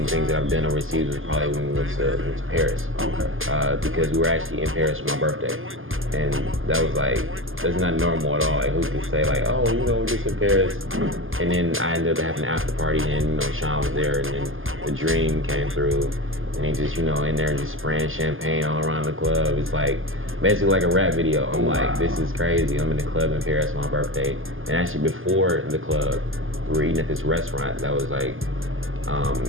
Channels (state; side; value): late; left; 0.59 ms